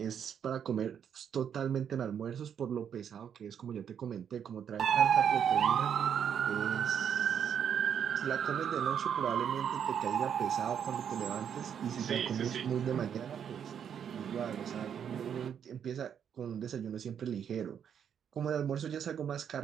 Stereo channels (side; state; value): left; quieter; 8.3 dB